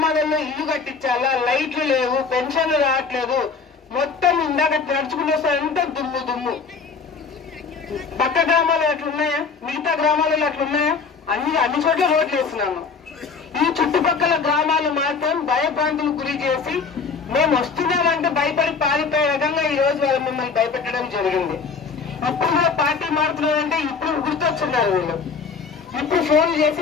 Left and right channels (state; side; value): quieter; right; 5.3 dB